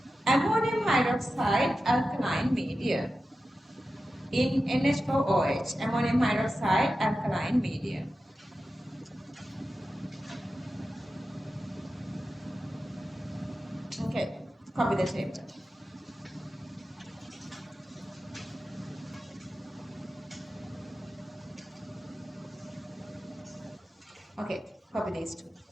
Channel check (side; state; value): both; normal; correlation 0.93